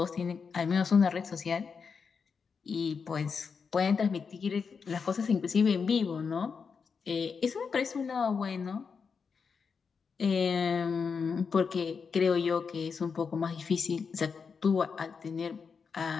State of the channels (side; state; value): right; quieter; 5.7 dB